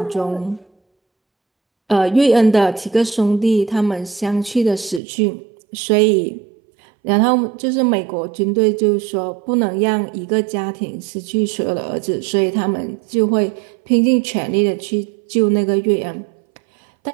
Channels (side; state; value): left; drops out; at 5.0 s